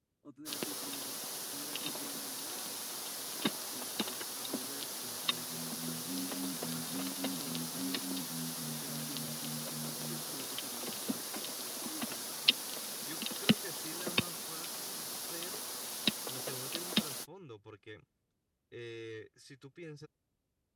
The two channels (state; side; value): identical; both; correlation 1.00